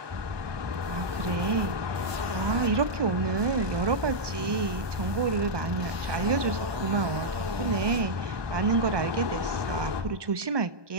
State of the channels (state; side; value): late; left; 1.2 ms